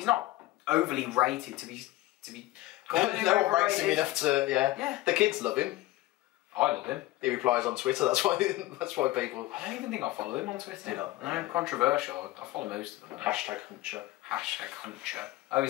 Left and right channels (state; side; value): quieter; right; 17.6 dB